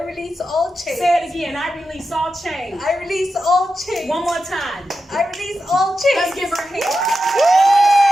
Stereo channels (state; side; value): normal; both; correlation 0.90